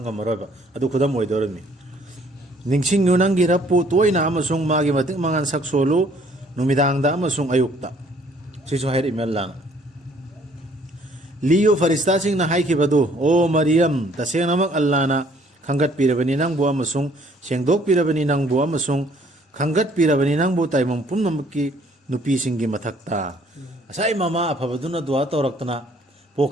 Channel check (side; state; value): both; normal; correlation 0.61